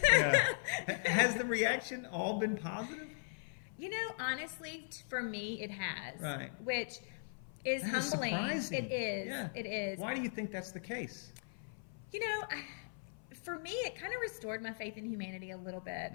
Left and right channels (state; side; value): silent; right; 52 dB below the other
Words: Has the reaction all been positive? You know, honestly, for me, it has. Right. Which is humbling. Surprising. It is. Yeah. It is. Why do you think that's the case? You know, for me, it kind of restored my faith in humanity a little bit,